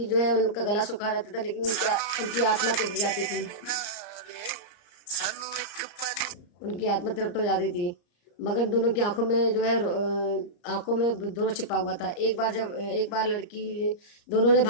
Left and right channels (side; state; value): right; late; 34 ms